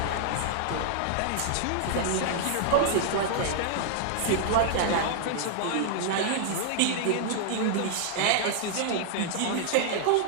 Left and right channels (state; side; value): different; both; correlation -0.01